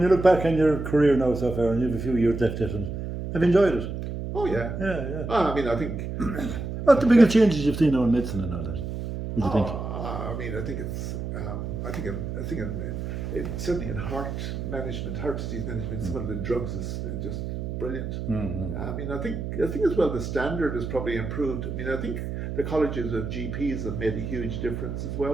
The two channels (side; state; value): right; noise; hum, 5 dB below the sound